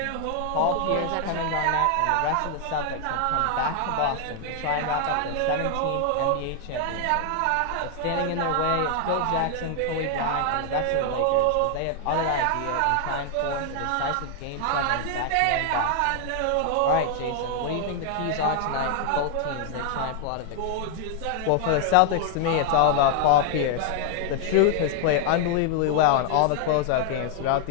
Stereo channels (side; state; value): both; different; correlation 0.00